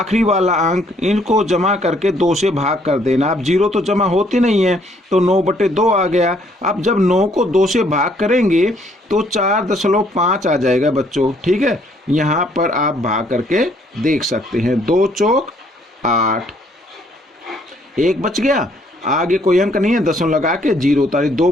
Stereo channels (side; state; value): both; normal; correlation 0.66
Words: वाला अंक, इनको जमा करके 2 से भाग कर देना। अब 0 तो जमा होती नहीं है तो 9/2 आ गया। अब जब 9 को 2 से भाग करेंगे तो 4.5 आ जाएगा बच्चों। ठीक है, यहाँ पर आप भाग करके देख सकते हैं। 2 चौक 8, 1 बच गया, आगे कोई अंक नहीं है, 10 लगा के 0 उतारे, 2